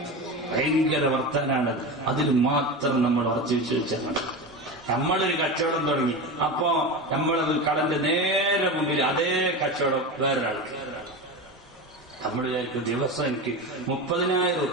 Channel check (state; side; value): normal; both; correlation 0.24